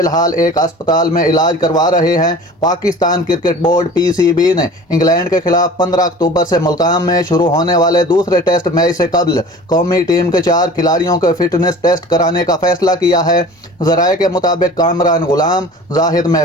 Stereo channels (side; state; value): both; normal; correlation 0.42